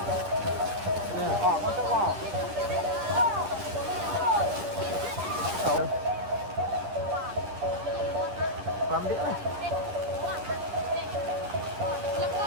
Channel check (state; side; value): late; left; 10 ms